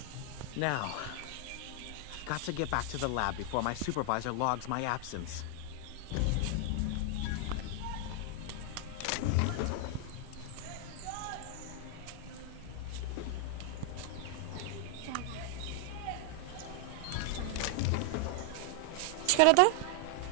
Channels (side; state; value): both; different; correlation 0.00